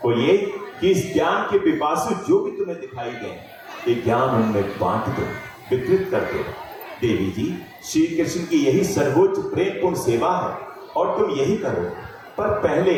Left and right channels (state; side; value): identical; both; correlation 1.00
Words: वो ये कि इस ज्ञान के पिपासु जो भी तुम्हें दिखाई दें, ये ज्ञान उनमें बांट दो, वितरित कर दो। देवी जी, श्री कृष्ण की यही सर्वोच्च प्रेमपूर्ण सेवा है और तुम यही करो। पर पहले